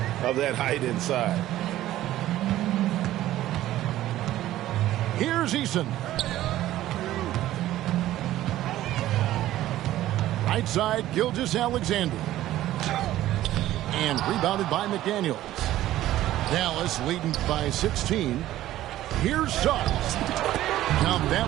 of that height inside. Here's Eason. Right side, Gilgeous-Alexander. And rebounded by McDaniels. Dallas leading by 16. Here's Suggs. Count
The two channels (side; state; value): left; quieter; 14.2 dB